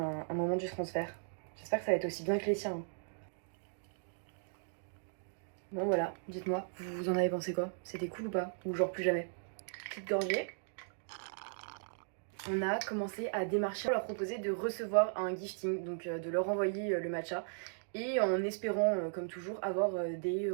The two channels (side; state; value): left; silent; digital silence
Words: moment du transfert. J'espère que ça va être aussi bien que les tiens. Bon voilà, dites-moi, vous en avez pensé quoi? C'était cool ou pas? Ou genre plus jamais? Petite gorgée. On a commencé à démarcher pour leur proposer de recevoir un gifting, donc de leur envoyer le matcha. Et en espérant, comme toujours, avoir des